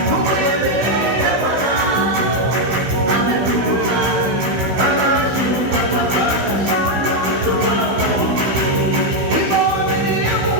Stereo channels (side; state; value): left; late; 16 ms